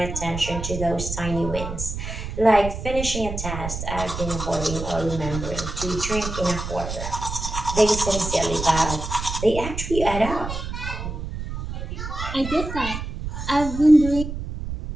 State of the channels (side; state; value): right; noise; rumble, 6 dB below the sound